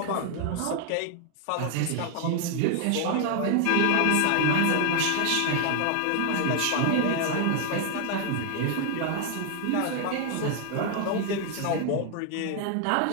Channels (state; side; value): different; both; correlation 0.00